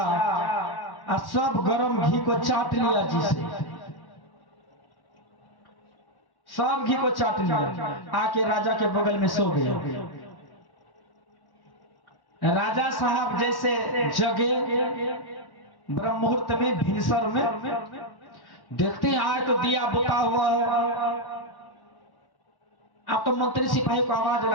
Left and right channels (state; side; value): late; right; 1.1 ms